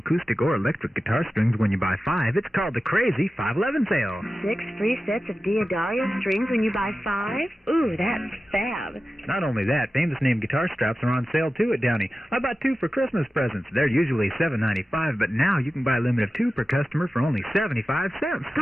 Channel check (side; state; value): both; normal; correlation 0.94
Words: or electric guitar strings when you buy 5. It's called the Crazy 511 sale. 6 free sets of Diodario strings when you buy 5? Ooh, that's fab. Not only that, famous name guitar straps are on sale, too, at Downey. I bought 2 for Christmas presents. They're usually $7.95, but now you can buy a limit of 2 per customer for only 75 cents.